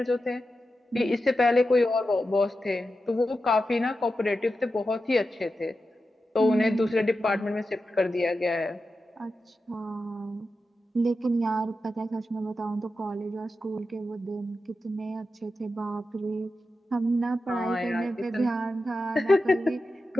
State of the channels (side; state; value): both; normal; correlation 0.90